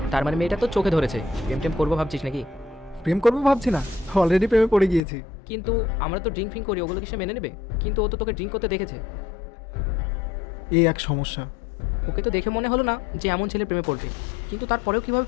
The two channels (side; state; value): right; drops out; at 5.0 s